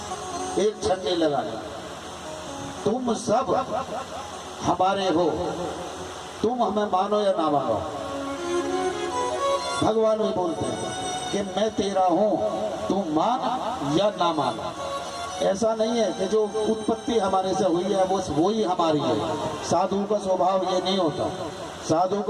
एक क्षण नहीं लगाना। तुम सब हमारे हो, तुम हमें मानो या ना मानो। भगवान भी बोलते हैं कि मैं तेरा हूं, तुम मान या ना मान। ऐसा नहीं है कि जो उत्पत्ति हमारे से हुई है वो ही हमारी है। साधु का स्वभाव ये नहीं होता। साधु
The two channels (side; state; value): both; identical; correlation 1.00